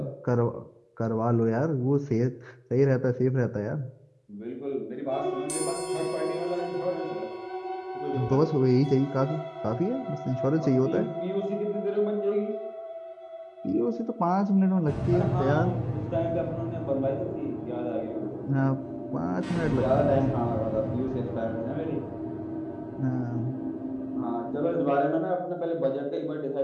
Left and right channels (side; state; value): both; identical; correlation 1.00